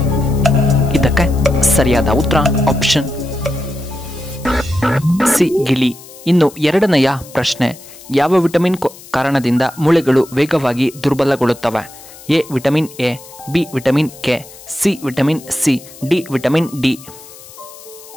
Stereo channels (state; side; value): noise; left; hiss, 19 dB below the sound